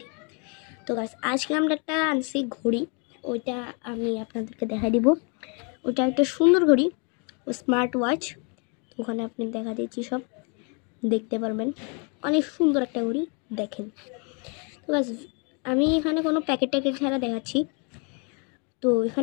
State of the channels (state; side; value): quieter; right; 35.6 dB